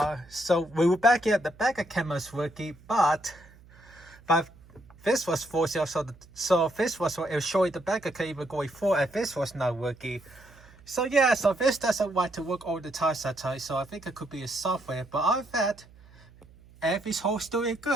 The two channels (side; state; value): right; noise; hum, 24 dB below the sound